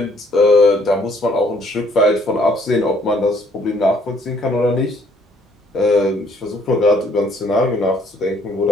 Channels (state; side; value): normal; both; correlation 0.64